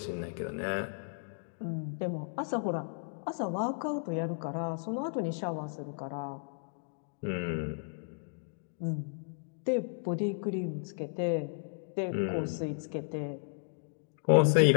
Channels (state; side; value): silent; right; digital silence